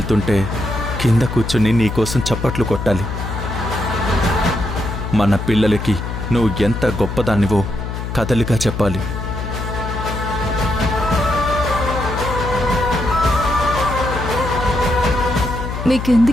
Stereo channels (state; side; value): noise; left; hum, 5 dB below the sound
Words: కింద కూర్చుని నీకోసం చప్పట్లు కొట్టాలి. మన పిల్లలకి నువ్వు ఎంత గొప్పదానివో కథలుగా చెప్పాలి.